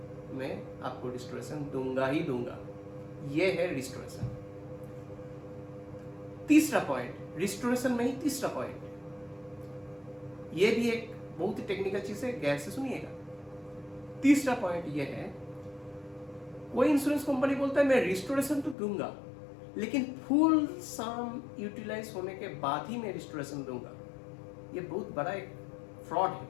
मैं आपको रिस्टोरेशन दूंगा ही दूंगा। यह है रिस्टोरेशन। तीसरा पॉइंट, रिस्टोरेशन में ही तीसरा पॉइंट, यह भी एक बहुत ही टेक्निकल चीज है, गैर से सुनिएगा। तीसरा पॉइंट यह है, कोई इंश्योरेंस कंपनी बोलता है मैं रिस्टोरेशन तो दूंगा लेकिन फुल सम यूटिलाइज होने के बाद ही मैं रिस्टोरेशन दूंगा। यह बहुत बड़ा एक फ्रॉड है।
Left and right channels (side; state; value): right; drops out; at 18.8 s